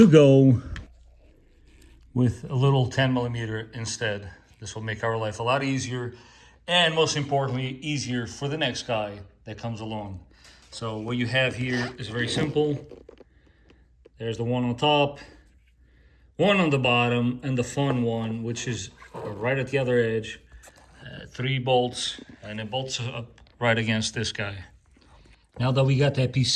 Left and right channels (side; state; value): both; identical; correlation 1.00